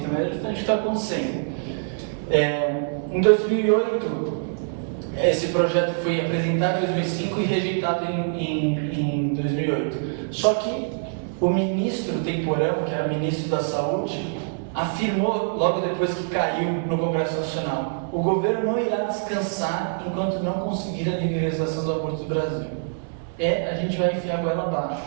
mas é justamente o que está acontecendo. Em 2008, esse projeto foi apresentado em 2005 e rejeitado em 2008. Só que o ministro temporão, que era ministro da Saúde, afirmou logo depois que caiu no Congresso Nacional: o governo não irá descansar enquanto não conseguir a legalização do aborto no Brasil. A gente vai enfiar a goela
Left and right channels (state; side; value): silent; left; digital silence